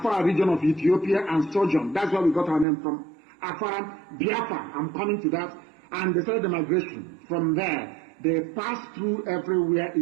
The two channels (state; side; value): drops out; left; at 2.7 s